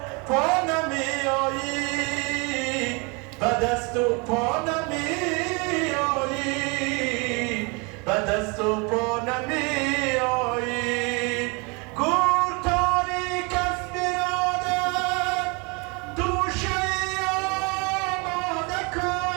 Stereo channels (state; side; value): quieter; left; 30.6 dB